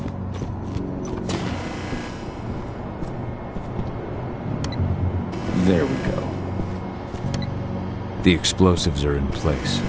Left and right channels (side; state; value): both; identical; correlation 1.00